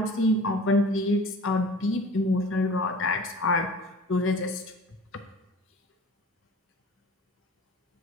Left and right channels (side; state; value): both; normal; correlation 0.42